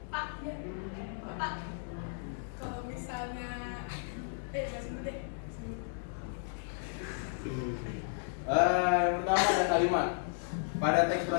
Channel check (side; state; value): right; silent; 55 dB below the other